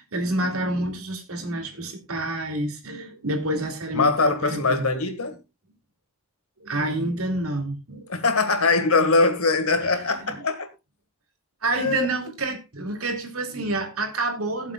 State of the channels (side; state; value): both; normal; correlation -0.13